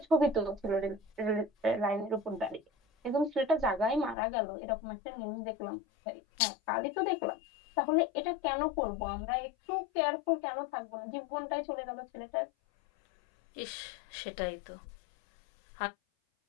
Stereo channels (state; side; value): drops out; right; at 4.2 s